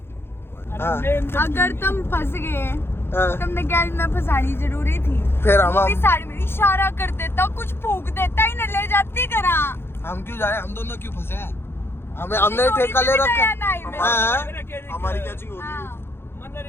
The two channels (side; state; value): right; late; 0.11 ms